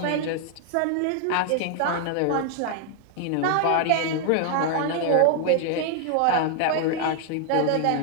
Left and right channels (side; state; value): both; different; correlation 0.00